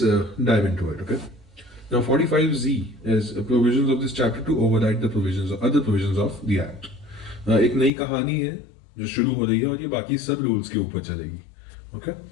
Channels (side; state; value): right; drops out; at 7.9 s